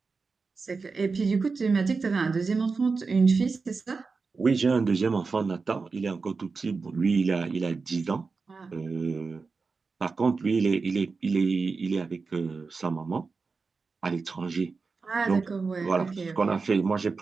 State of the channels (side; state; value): left; quieter; 4.5 dB